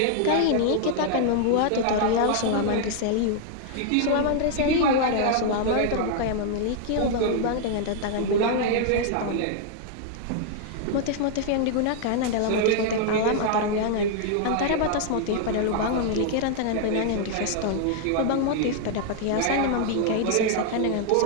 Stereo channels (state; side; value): different; both; correlation -0.01